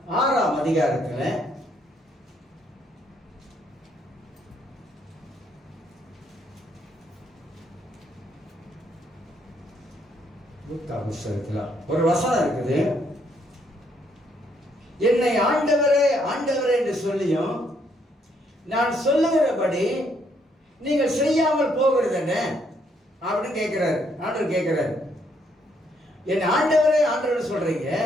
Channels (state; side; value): normal; both; correlation 0.71